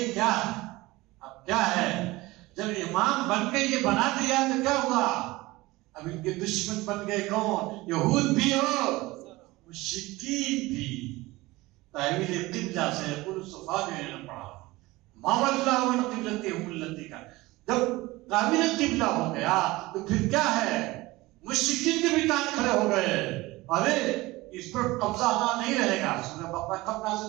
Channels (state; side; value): quieter; left; 20.3 dB